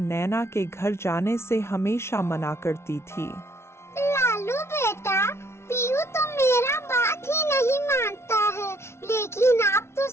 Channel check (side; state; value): right; late; 0.13 ms